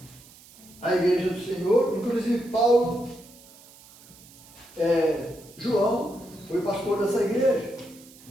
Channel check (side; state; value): right; noise; hiss, 23 dB below the sound